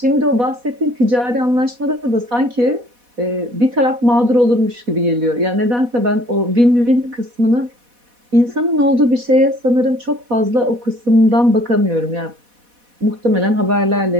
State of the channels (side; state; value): left; late; 4.1 ms